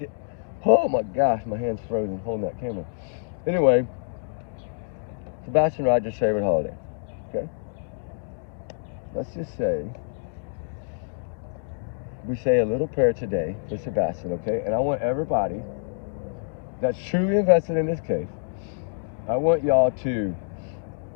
Oh my gosh, my hand's frozen holding that camera. Anyway, Sebastian Rogers' favorite holiday. Okay? Let's just say we say a little prayer today for Sebastian, okay? And I want everybody that's truly invested in this case, I want y'all to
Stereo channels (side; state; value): right; silent; digital silence